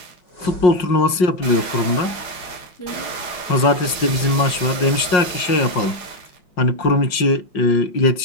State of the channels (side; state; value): right; late; 5.5 ms